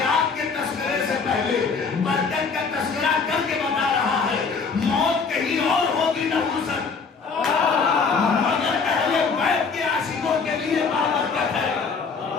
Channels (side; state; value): right; quieter; 5.1 dB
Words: کے تذکرے سے پہلے برکت کا تذکرہ کر کے بتا رہا ہے موت کہیں اور ہوگی نحوست، مگر اہل بیت کے عاشقوں کے لیے بابرکت ہے۔